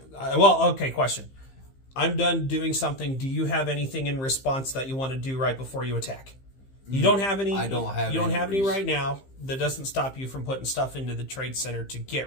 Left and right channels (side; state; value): right; late; 15 ms